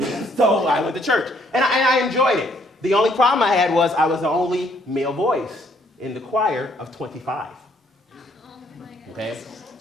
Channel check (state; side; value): normal; both; correlation 0.67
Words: So I went to church, and I enjoyed it. The only problem I had was I was the only male voice in the choir of 25. Okay?